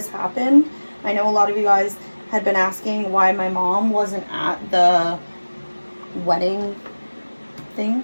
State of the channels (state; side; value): inverted; both; correlation -1.00